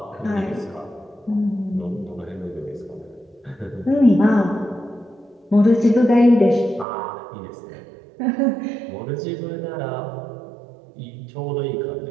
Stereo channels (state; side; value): drops out; left; at 6.9 s